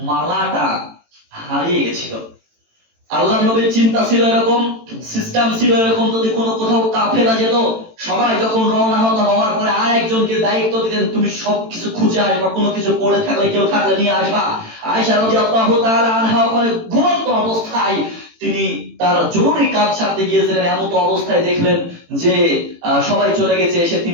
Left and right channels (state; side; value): late; left; 18 ms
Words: মালাটা হারিয়ে গেছিল। আল্লাহর নবীর চিন্তা ছিল এরকম, সিস্টেম ছিল এরকম, যদি কোনো কোথাও কাফেলা যেত, সবাই যখন রওনা হওয়ার পরে আর একজনকে দায়িত্ব দিতেন, তুমি সবকিছু খুঁজে আসবা, কোনো কিছু পড়ে থাকলে কেউ থাকলে নিয়ে আসবা। আয়েশা রাদিয়াল্লাহু তাআলা আনহা ওখানে ঘুমন্ত অবস্থায় তিনি তার জরুরি কাজ সারতে গিয়েছিলেন। এমন অবস্থায় দেখলেন যে সবাই চলে গেছে, এসে